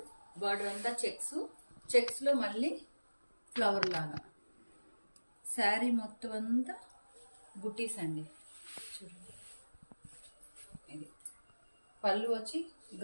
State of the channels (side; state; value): both; inverted; correlation -1.00